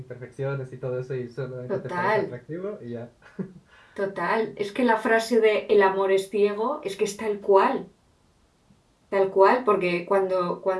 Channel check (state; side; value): identical; both; correlation 1.00